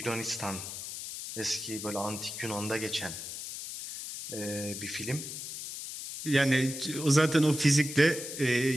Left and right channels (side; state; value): left; noise; hiss, 8 dB below the sound